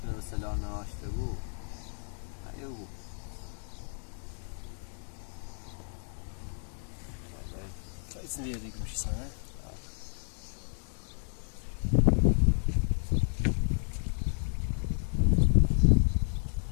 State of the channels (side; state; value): right; silent; 55 dB below the other